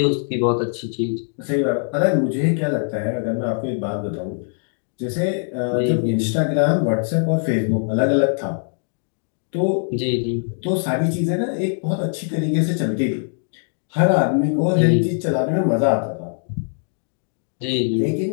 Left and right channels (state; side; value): silent; right; 64 dB below the other